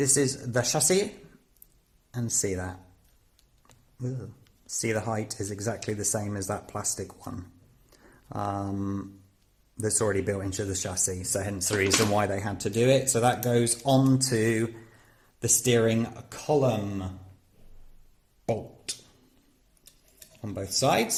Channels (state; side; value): identical; both; correlation 1.00